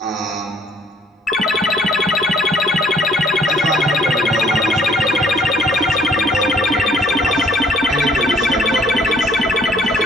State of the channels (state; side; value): normal; both; correlation 0.61